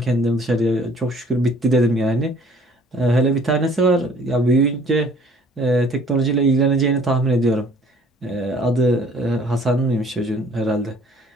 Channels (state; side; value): normal; both; correlation 0.56